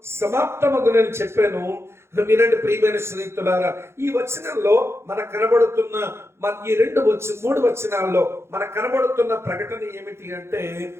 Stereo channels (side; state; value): left; late; 0.12 ms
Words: సమాప్తమగునని చెప్పాను. వినండి ప్రియమైన స్నేహితులారా, ఈ వచనంలో మనకు కనబడుతున్న ఈ 3 వచనాల్లో మనకు కనబడుతున్న ప్రకటన ఏమిటి అంటే,